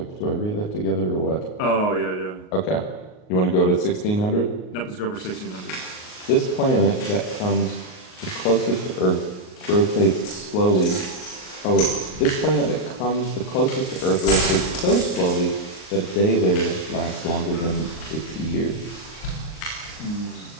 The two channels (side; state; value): right; late; 38 ms